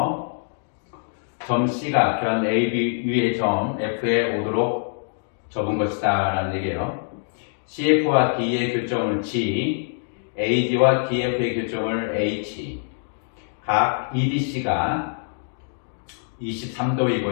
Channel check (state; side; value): silent; right; digital silence